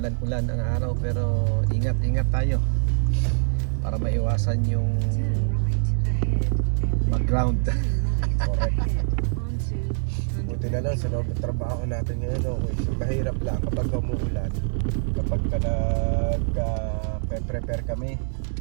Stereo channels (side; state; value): left; silent; digital silence